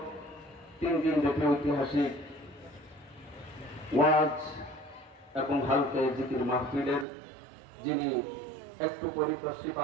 3 দিন ব্যাপী ঐতিহাসিক ওয়াজ এবং হালকা জিকির মাহফিলের যিনি একটু পরিপ্রশ্রী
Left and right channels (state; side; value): drops out; left; at 7.1 s